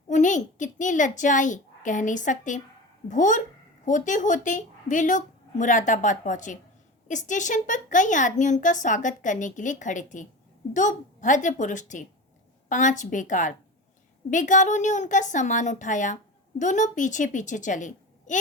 उन्हें कितनी लज्जा आई कह नहीं सकते। भोर होते होते वे लोग मुरादाबाद पहुंचे। स्टेशन पर कई आदमी उनका स्वागत करने के लिए खड़े थे। 2 भद्र पुरुष थे, 5 बेकार। बेगारों ने उनका सामान उठाया। दोनों पीछे पीछे चले।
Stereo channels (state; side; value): normal; both; correlation 0.29